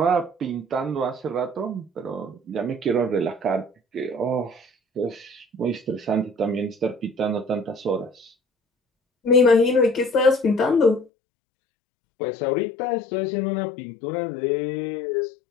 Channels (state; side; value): drops out; right; at 11.1 s